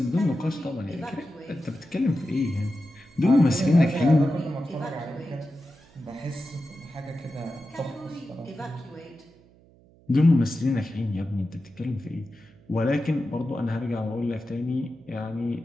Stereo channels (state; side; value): noise; right; hum, 28 dB below the sound